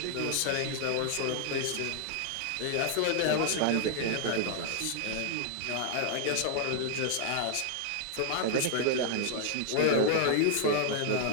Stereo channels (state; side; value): different; both; correlation 0.00